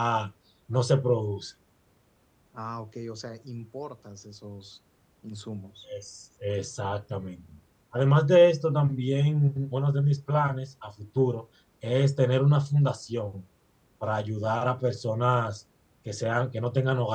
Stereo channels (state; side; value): identical; both; correlation 1.00